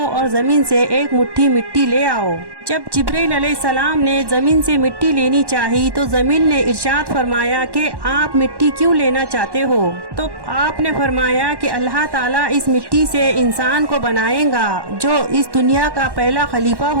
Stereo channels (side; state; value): left; late; 1.1 ms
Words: اور زمین سے ایک مٹھی مٹی لے آؤ۔ جب جبریل علیہ السلام نے زمین سے مٹی لینی چاہی تو زمین نے ارشاد فرمایا کہ آپ مٹی کیوں لینا چاہتے ہو؟ تو آپ نے فرمایا کہ اللہ تعالیٰ اس مٹی سے انسان کو بنائے گا جو اس دنیا کا پہلا خلیفہ